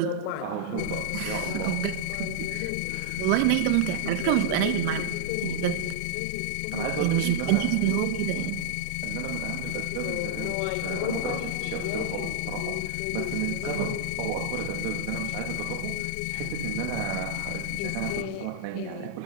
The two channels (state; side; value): different; both; correlation -0.01